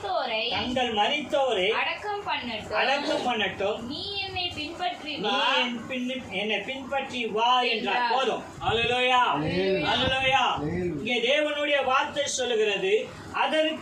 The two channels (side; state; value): both; identical; correlation 1.00